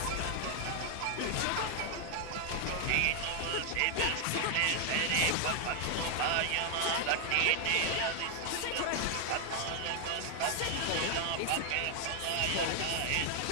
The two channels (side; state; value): both; different; correlation 0.00